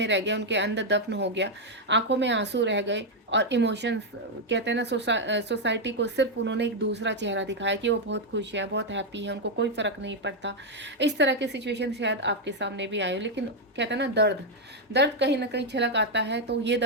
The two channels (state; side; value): normal; both; correlation 0.01